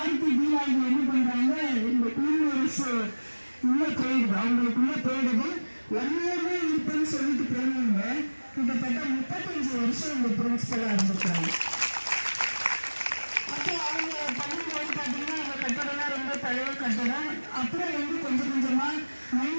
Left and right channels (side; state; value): both; inverted; correlation -1.00